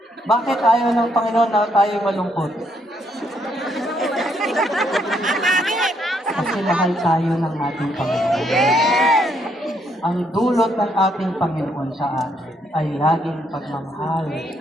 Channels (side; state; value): both; normal; correlation 0.73